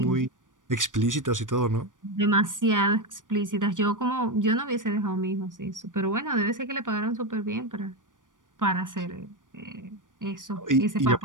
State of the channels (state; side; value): late; left; 0.88 ms